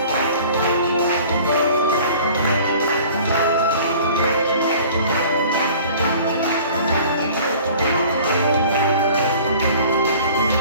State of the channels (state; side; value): inverted; both; correlation -0.48